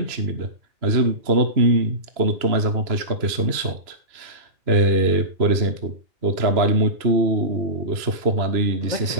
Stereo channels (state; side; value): late; left; 2.9 ms